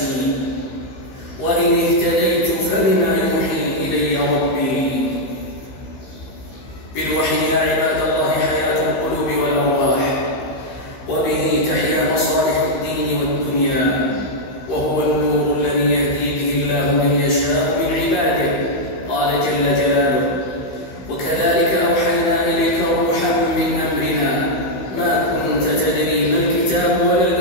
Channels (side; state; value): right; late; 15 ms